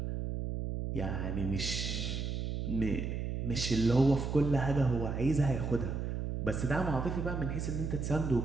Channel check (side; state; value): right; noise; hum, 2 dB below the sound